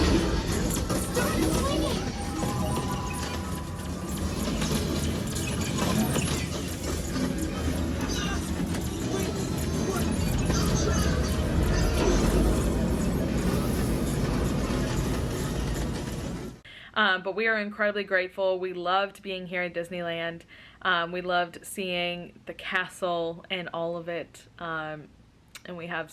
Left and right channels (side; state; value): both; identical; correlation 1.00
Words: But we are incredibly grateful. We loved being here at Disneyland. We loved seeing the castle and all of it. And we have